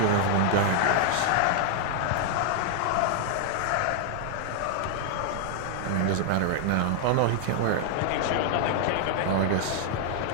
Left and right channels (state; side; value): different; both; correlation 0.00